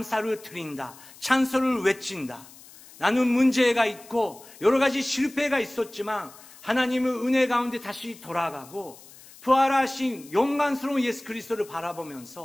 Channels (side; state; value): left; noise; hiss, 21 dB below the sound